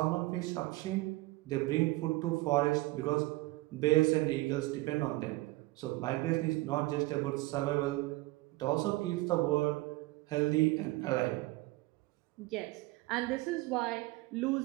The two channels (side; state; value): left; quieter; 20.8 dB